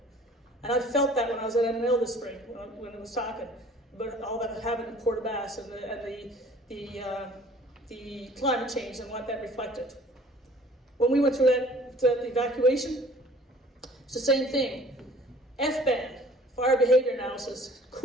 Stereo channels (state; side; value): normal; both; correlation 0.52